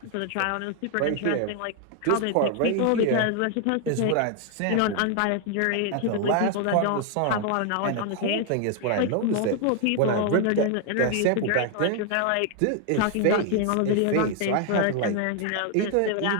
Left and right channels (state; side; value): different; both; correlation 0.00